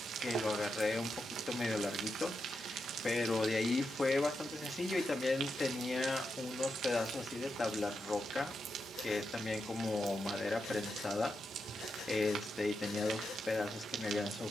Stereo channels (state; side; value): normal; both; correlation 0.86